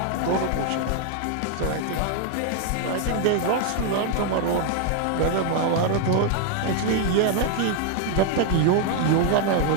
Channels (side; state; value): both; different; correlation 0.00